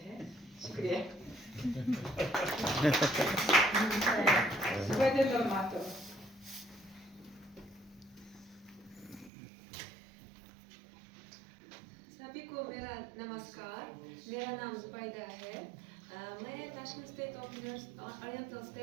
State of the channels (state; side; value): drops out; left; at 9.3 s